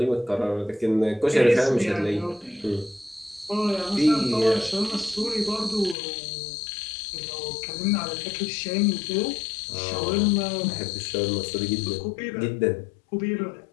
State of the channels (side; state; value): right; drops out; at 6.0 s